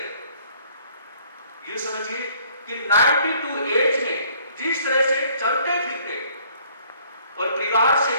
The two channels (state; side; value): inverted; both; correlation -0.60